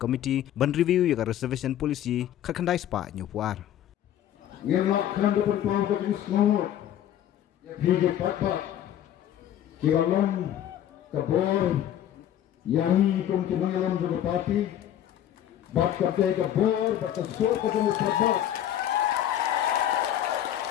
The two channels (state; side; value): quieter; right; 11.2 dB